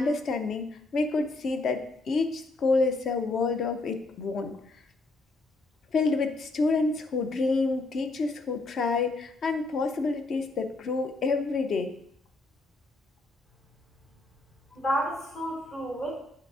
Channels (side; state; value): right; quieter; 3.1 dB